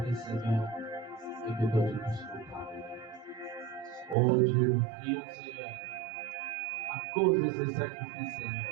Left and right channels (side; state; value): left; drops out; at 4.2 s